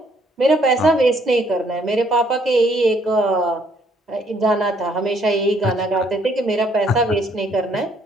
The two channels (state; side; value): normal; both; correlation 0.66